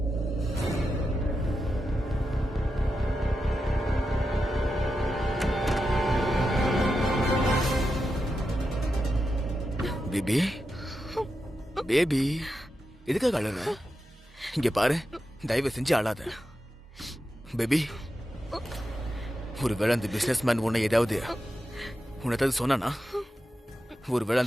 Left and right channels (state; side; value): normal; both; correlation 0.89